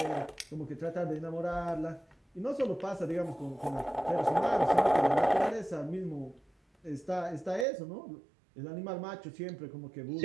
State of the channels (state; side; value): drops out; left; at 7.7 s